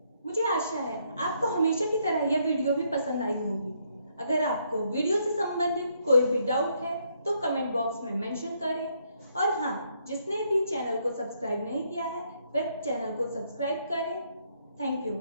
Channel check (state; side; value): inverted; both; correlation -0.73